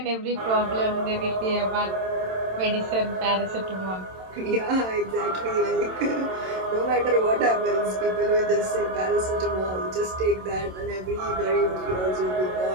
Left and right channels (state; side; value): late; left; 27 ms